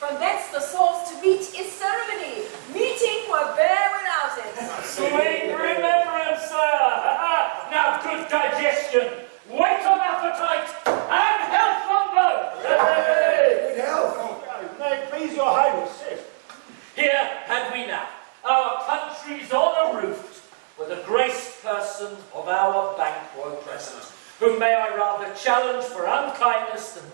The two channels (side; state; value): left; silent; digital silence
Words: thence the source to meet is ceremony. Meeting were bare without it. Sweet remembrance, sir! Now good digestion, weight on appetite, and health on both! Good health. May it please your highness, sit. Here had we now our country's honour-roofed, with a graced person of our Banquo present, whom may I rather challenge for unkindness than